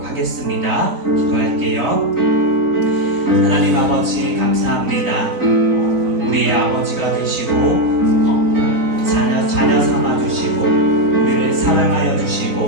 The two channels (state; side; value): late; left; 4.0 ms